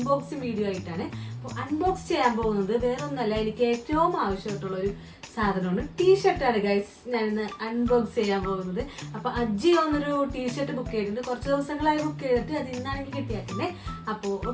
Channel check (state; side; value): identical; both; correlation 1.00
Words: വീഡിയോ ആയിട്ടാണ്. അപ്പോൾ അൺബോക്സ് ചെയ്യാൻ പോകുന്നത് വേറൊന്നല്ല, എനിക്ക് ഏറ്റവും ആവശ്യമായിട്ടുള്ള ഒരു സാധനമാണ് ടീഷർട്ടാണ് ഗൈസ്. ഞാനിന്ന് അൺബോക്സ് ചെയ്യാൻ പോകുന്നത്. അപ്പോൾ അജിയോ എന്നൊരു ടീഷർട്ട് ബുക്ക് ചെയ്തിട്ടുണ്ട്. കുറച്ച് ദിവസങ്ങളായി ബുക്ക് ചെയ്തിട്ട് അത് ഇന്നാണെങ്കിൽ കിട്ടിയാക്കുന്നത്. അപ്പോൾ